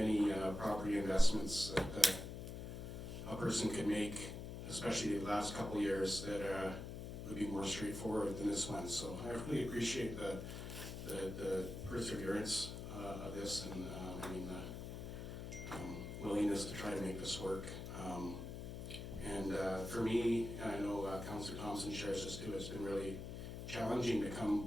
property investments that a person could make, especially the last couple of years, that would be more straightforward than this one. So I really appreciate the perseverance of this, and the willingness to try to make this work. For me, and I know Councillor Thompson shares this too, it's been really challenging to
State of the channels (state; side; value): noise; left; hum, 7 dB below the sound